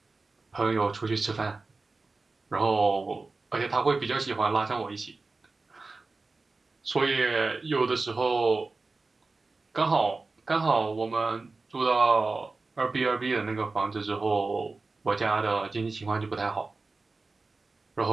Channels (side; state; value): left; quieter; 3.7 dB